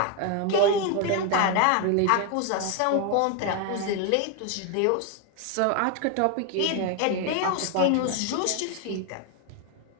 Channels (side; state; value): both; different; correlation 0.01